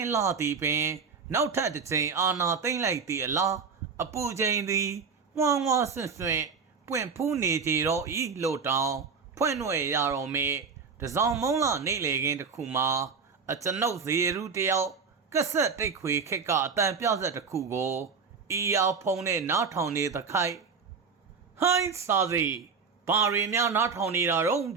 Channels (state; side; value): quieter; left; 5.3 dB